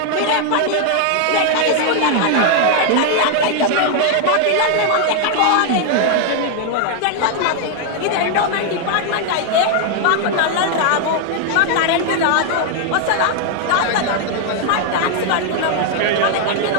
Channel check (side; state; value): both; different; correlation 0.00